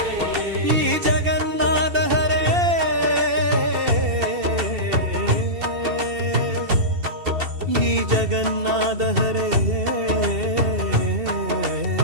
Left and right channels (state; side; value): late; left; 2.7 ms